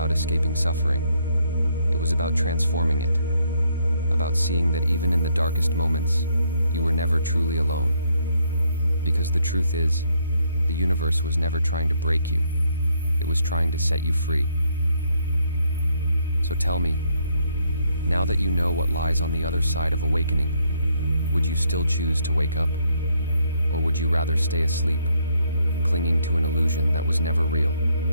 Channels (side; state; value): both; inverted; correlation -0.72